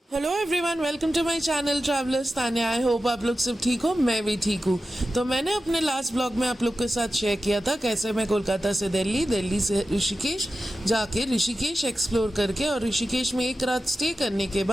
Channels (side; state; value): both; normal; correlation 0.93